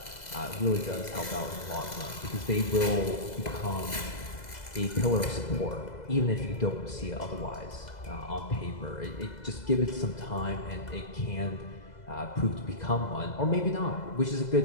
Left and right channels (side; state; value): right; late; 2.0 ms